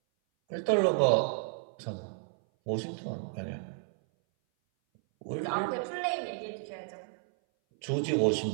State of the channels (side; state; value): left; silent; 57 dB below the other